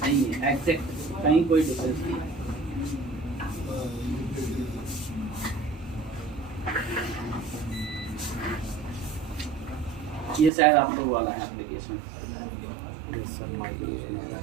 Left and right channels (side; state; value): left; drops out; at 10.5 s